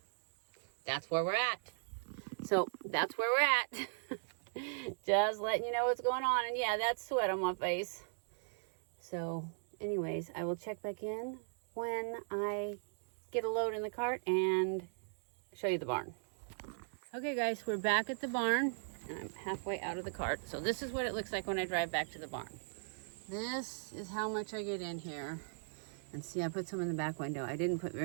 that's where we're at. Just letting you know what's going on. And yeah, that's sweat on my face. So anyways, I will check back in when I get a load in the cart and show you the barn. Okay guys, we're back at the barn and I'm halfway out of the cart. So this is what it looks like when I drive back to the barn. This is how much I get in here. And see, I put some in the back window. I didn't put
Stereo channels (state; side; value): silent; left; digital silence